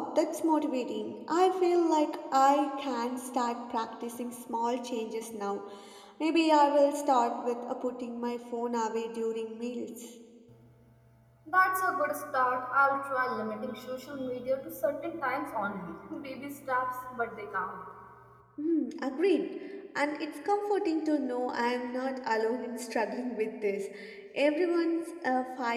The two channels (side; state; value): both; identical; correlation 1.00